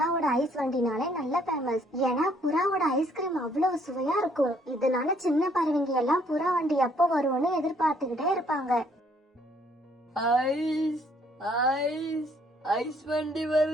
ஐஸ் வண்டினாலே நல்ல ஃபேமஸ். ஏன்னா புறாவோட ஐஸ்கிரீம் அவ்வளவு சுவையா இருக்கும். இதனால சின்ன பறவைங்க எல்லாம் புறா வண்டி எப்போ வரும்னு எதிர்பார்த்துக்கிட்டே இருப்பாங்க. ஐஸ் ஐஸ் ஐஸ் வண்டி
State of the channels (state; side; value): normal; both; correlation 0.65